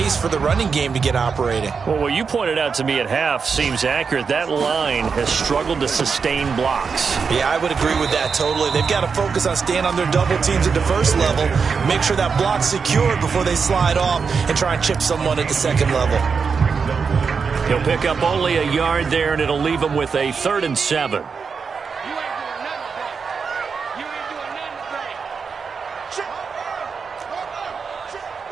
for the running game to get operating. Well, what you pointed out to me at half seems accurate. That line has struggled to sustain blocks. Yeah, I would agree with that totally. They've got to focus on staying on their double teams at the first level, make sure that block's secured before they slide off and try and chip someone at the second level. He'll pick up only a yard there, and it'll leave him with a 3rd and 7.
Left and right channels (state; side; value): quieter; left; 5.6 dB